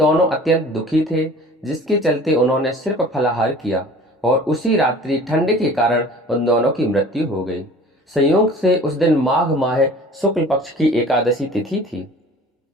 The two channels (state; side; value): normal; both; correlation 0.45